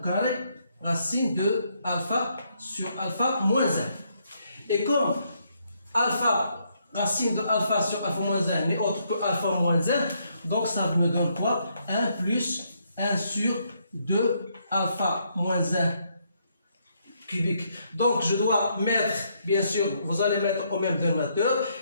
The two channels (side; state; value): both; inverted; correlation -0.74